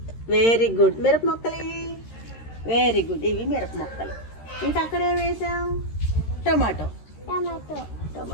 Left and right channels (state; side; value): late; right; 13 ms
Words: Very good. మిరప మొక్కలు ఇవి. Very good. ఇవి మిరప మొక్కలు. ఇంకా అక్కడ ఏం వేసాం? టమాటో. టమాటో.